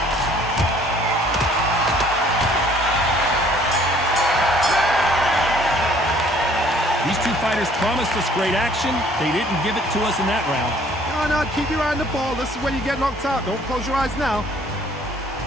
These two fighters promised us great action. They didn't give it to us in that round. No, keep your eye on the ball. This is when you get knocked out. Don't close your eyes now.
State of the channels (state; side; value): normal; both; correlation 0.57